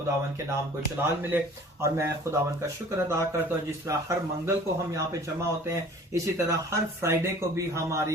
के नाम को जलाल मिले। और मैं खुदावन का शुक्र अदा करता हूं, जिस तरह हर मंगल को हम यहाँ पे जमा होते हैं, इसी तरह हर फ्राइडे को भी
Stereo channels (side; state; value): both; normal; correlation 0.48